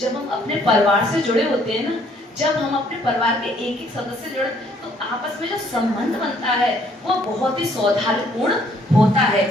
हम अपने परिवार से जुड़े होते हैं ना, जब हम अपने परिवार के एक एक सदस्य जुड़े, तो आपस में जो संबंध बनता है वो बहुत ही सौहार्दपूर्ण होता है।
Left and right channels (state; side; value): normal; both; correlation 0.64